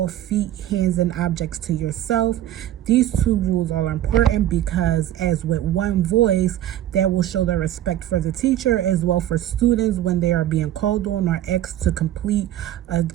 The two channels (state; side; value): quieter; left; 12.5 dB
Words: feet, hands, and objects to yourself. These two rules are important because, as with one voice, that will show the respect for the teacher as well for students when they are being called on or asked to complete a